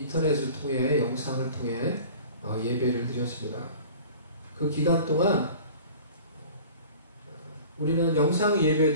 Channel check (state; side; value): inverted; both; correlation -0.43